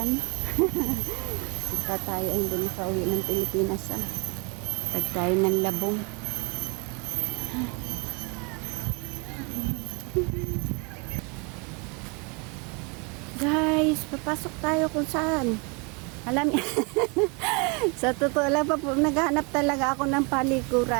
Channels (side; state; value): left; quieter; 32.1 dB